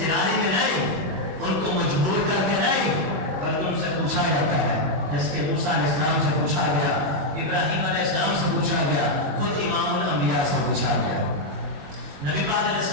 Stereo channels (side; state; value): left; late; 21 ms